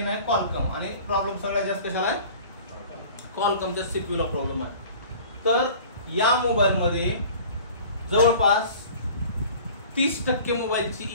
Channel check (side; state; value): both; inverted; correlation -0.45